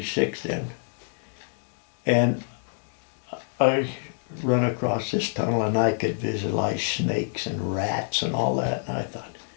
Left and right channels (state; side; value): silent; right; 60 dB below the other